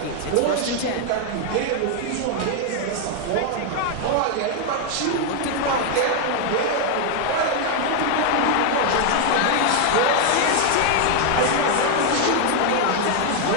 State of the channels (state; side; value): different; both; correlation 0.00